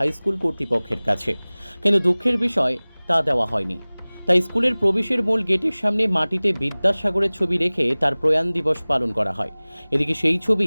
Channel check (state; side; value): inverted; both; correlation -1.00